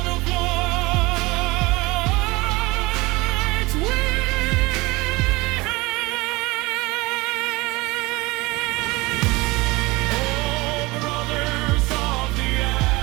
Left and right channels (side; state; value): left; quieter; 22.6 dB